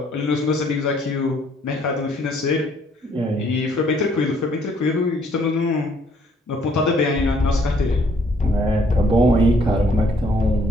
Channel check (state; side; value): normal; both; correlation 0.64